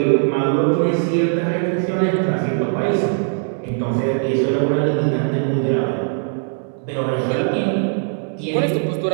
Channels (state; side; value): silent; left; digital silence